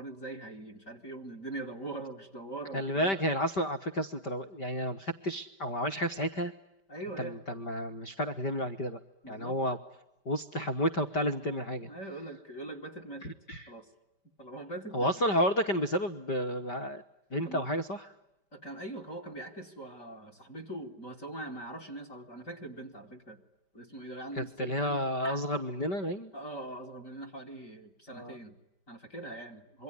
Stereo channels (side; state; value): right; late; 5.1 ms